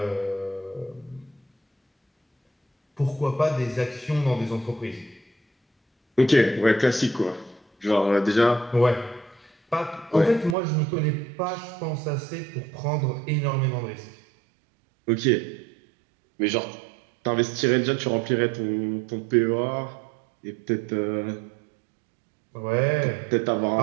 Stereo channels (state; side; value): drops out; left; at 10.6 s